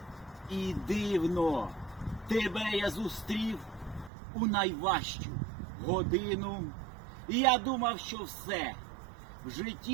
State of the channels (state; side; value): drops out; left; at 4.1 s